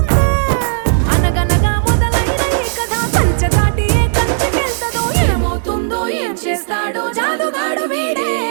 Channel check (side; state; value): left; silent; digital silence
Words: అనగనగా మొదలైన ఈ కథ కంచె దాటి ఏ కంచెకెళ్తదో ఏమవుతుందో ఏం చేస్తాడో జాదుగాడు వీడే